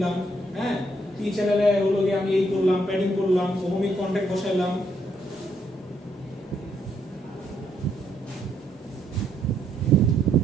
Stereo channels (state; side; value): normal; both; correlation 0.73